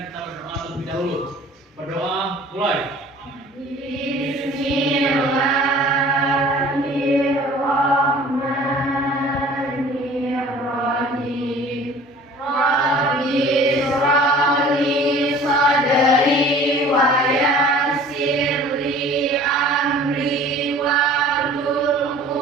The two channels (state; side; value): normal; both; correlation 0.47